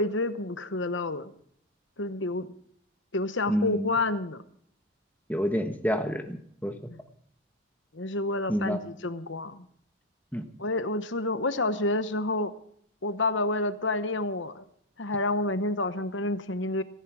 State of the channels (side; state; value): both; normal; correlation 0.07